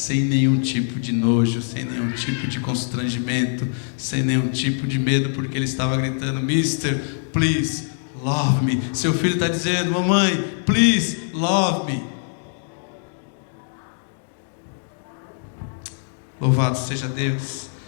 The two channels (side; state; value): right; silent; digital silence